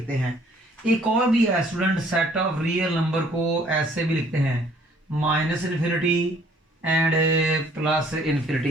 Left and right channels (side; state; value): both; normal; correlation 0.60